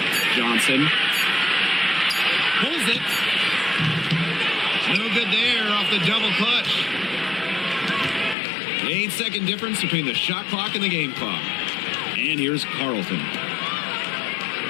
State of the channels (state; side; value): drops out; right; at 8.3 s